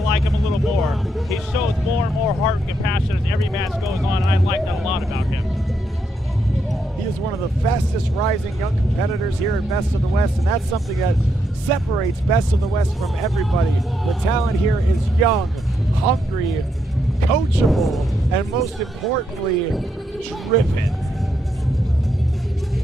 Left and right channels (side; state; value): both; normal; correlation 0.79